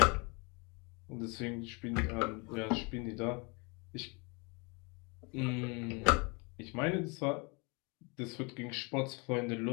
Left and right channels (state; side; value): quieter; right; 30.8 dB